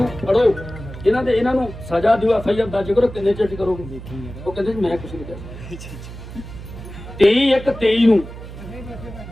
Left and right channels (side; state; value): right; noise; hum, 12 dB below the sound